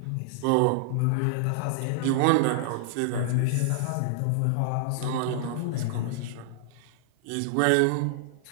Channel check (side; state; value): both; different; correlation -0.01